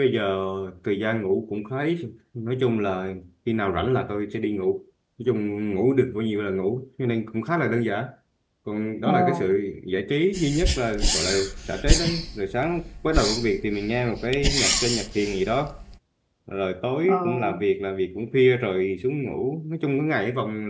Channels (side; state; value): both; identical; correlation 1.00